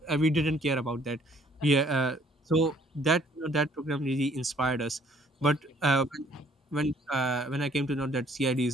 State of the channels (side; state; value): both; normal; correlation 0.61